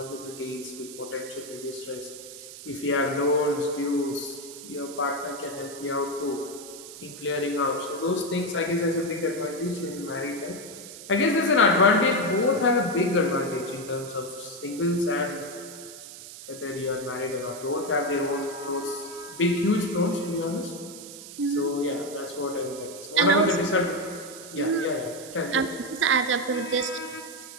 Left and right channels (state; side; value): noise; right; hiss, 14 dB below the sound